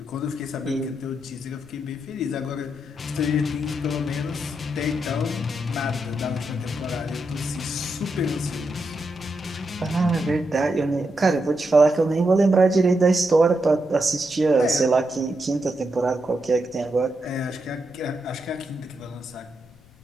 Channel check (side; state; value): left; noise; rumble, 26 dB below the sound